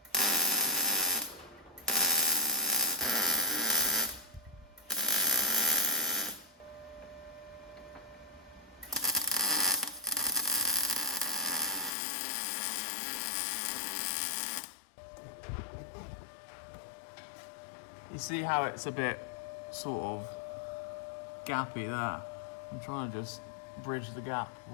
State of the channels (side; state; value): right; drops out; at 11.9 s